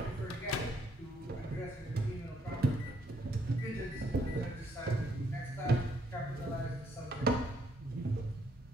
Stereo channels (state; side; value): normal; both; correlation 0.70